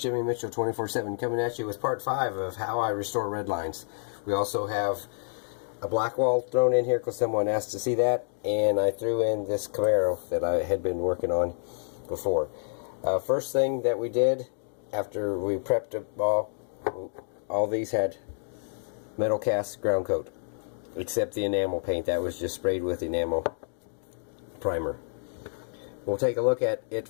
Mitchell 24/7 coming at you with part 5 of how I restore Redlines. We also have a black wall thrown in here because someone asked to see that, and I threw in this Camaro that I had been working on before. First thing that we did after we prepped all these had metal cast ground coat, except the enamel paint that was just sprayed with enamel primer. We'll take a look at it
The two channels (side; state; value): right; silent; digital silence